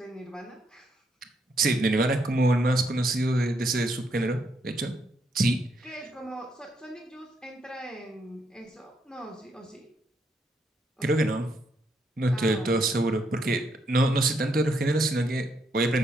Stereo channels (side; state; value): both; normal; correlation 0.76